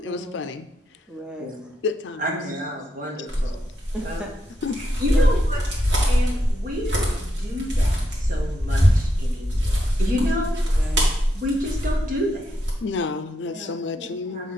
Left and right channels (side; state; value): both; normal; correlation 0.81